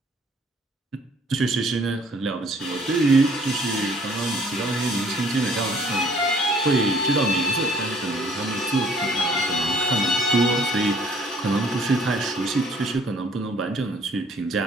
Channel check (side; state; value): both; normal; correlation 0.58